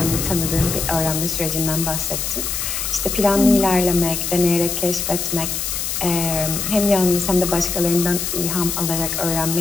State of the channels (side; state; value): left; noise; hiss, 2 dB below the sound